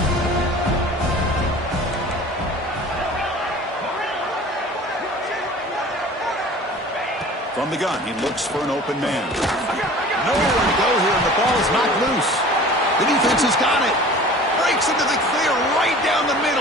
From the gun, he looks for an open man. Nowhere to go here, and the ball is knocked loose. The defense has got it. Breaks into the clear right down the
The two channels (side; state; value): both; normal; correlation 0.43